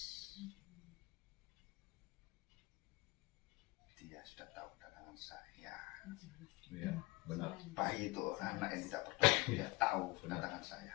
Dia sudah tahu kedatangan saya. Iya, benar. Bayi itu anak yang tidak berdosa. Dia tahu kedatangan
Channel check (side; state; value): right; quieter; 22.0 dB